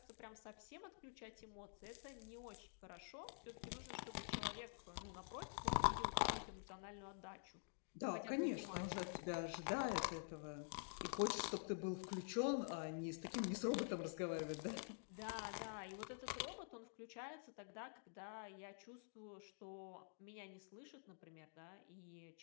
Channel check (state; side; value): silent; right; digital silence